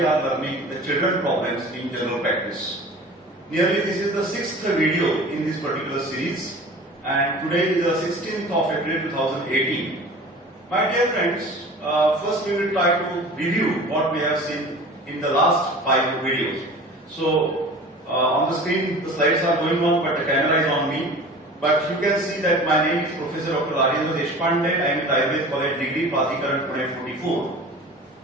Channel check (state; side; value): normal; both; correlation 0.40